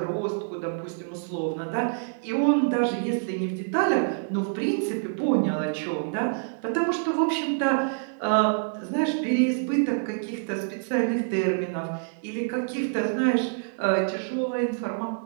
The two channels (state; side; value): silent; left; digital silence